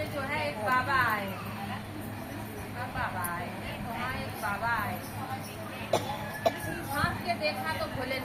जो है एक बाबा आए। कब बाबा आए? वहाँ एक बाबा आए। कृष्ण झांक के देखा तो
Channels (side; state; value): both; identical; correlation 1.00